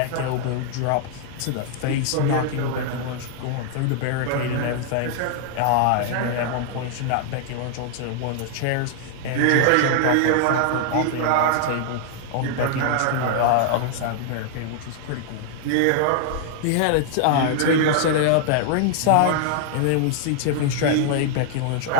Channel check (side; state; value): both; different; correlation -0.01